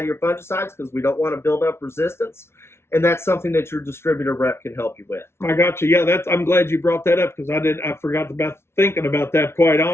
fungicides, because we don't want to build up resistance. And that's something that your distributor rep can help you with. I got you. Yeah, I'm glad you brought that up, because I forgot about thinking about that, quite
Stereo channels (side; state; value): right; late; 0.12 ms